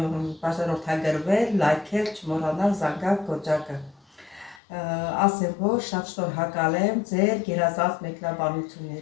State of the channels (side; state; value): right; drops out; at 4.6 s